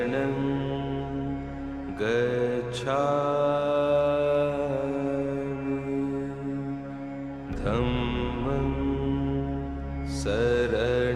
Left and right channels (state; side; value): identical; both; correlation 1.00